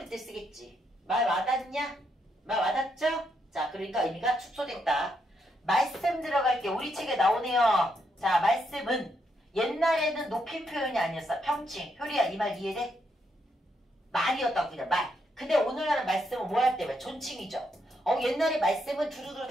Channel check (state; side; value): normal; both; correlation 0.78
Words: 때 쓰겠지. 말 와닿냐? 말 와닿죠? 자, 그러니까 의미가 축소됐다. 말씀 들어갈게. 우리 책에 나오네요. 자, 말씀은 옛날에는 높임 표현이 아니었어. 평칭. 효리야, 이 말 이해돼? 말이었다고 그냥 말. 근데 오늘날은 말씀은 뭐 할 때? 존칭이죠. 옛날에 말씀은 두루두루